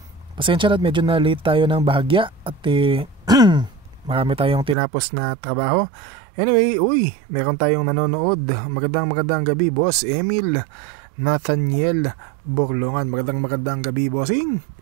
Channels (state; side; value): drops out; left; at 4.8 s